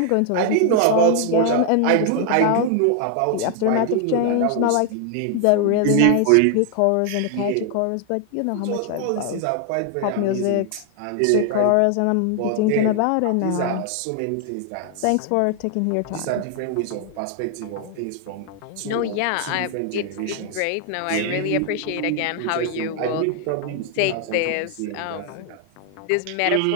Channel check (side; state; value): both; different; correlation 0.00